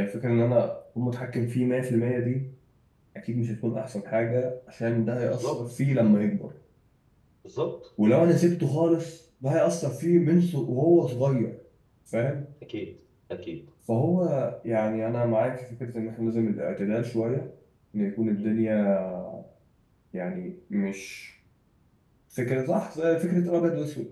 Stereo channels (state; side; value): identical; both; correlation 1.00